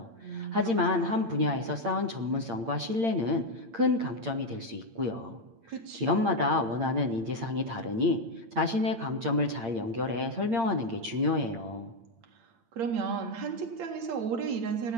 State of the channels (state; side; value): late; left; 8.8 ms